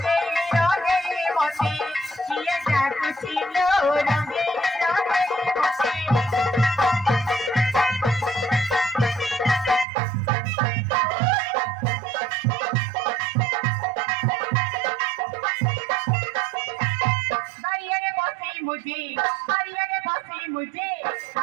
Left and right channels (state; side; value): drops out; left; at 9.9 s